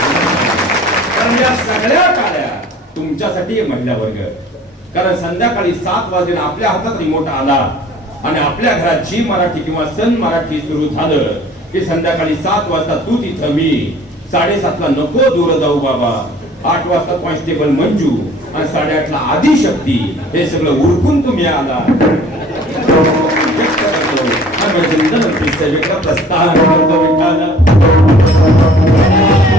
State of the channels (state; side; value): normal; both; correlation 0.50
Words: कारण या सगळ्या टाळ्या तुमच्यासाठी महिला वर्ग. कारण संध्याकाळी 7 वाजता आपल्या हातात रिमोट आला आणि आपल्या घरात जी मराठी किंवा सन मराठी सुरू झालं की संध्याकाळी 7 वाजता तू तिथं, मी 7:30 ला नको दूर जाऊ बाबा, 8 वाजता कॉन्स्टेबल मंजू आणि 8:30 ला आदिशक्ती, हे सगळं उरकून तुम्ही आला. प्रस्थान करतो विठ्ठल.